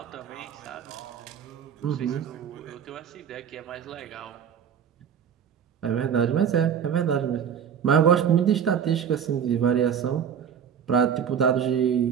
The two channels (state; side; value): quieter; left; 8.1 dB